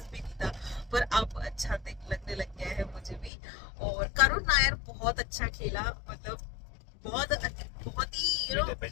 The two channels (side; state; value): right; drops out; at 3.3 s